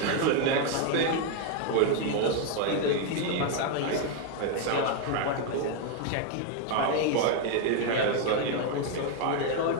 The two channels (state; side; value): different; both; correlation 0.01